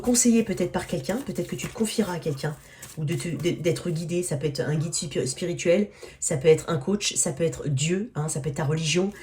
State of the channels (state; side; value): identical; both; correlation 1.00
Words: peut-être par quelqu'un, peut-être que tu te confieras à quelqu'un, ou d'être guidé, ça peut être un guide spirituel, ça peut être un coach, ça peut être Dieu, hein, ça peut être ta religion,